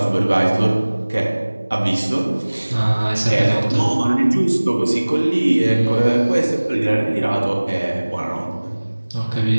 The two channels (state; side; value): inverted; both; correlation -1.00